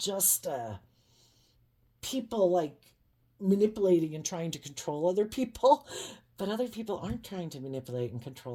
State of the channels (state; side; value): identical; both; correlation 1.00